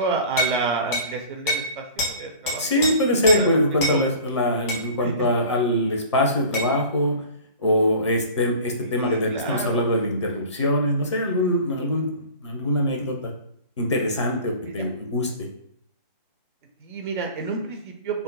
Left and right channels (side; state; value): both; inverted; correlation -0.42